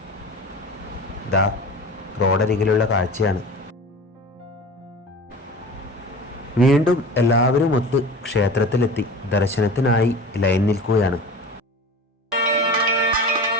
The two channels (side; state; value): both; normal; correlation 0.36